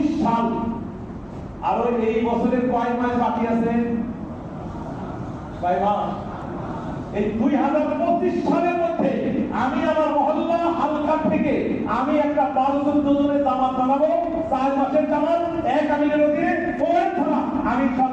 সাল। আর এই বছরের কয় মাস বাকি আছে? 6 মাস। এই 2025 সালের মধ্যে আমি আমার মহল্লা হালকা থেকে আমি একটা 12-14 জনের জামাত বানাবো, 4 মাসের জামাত, এক আমিরের অধীনে ওই থানা আমি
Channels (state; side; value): identical; both; correlation 1.00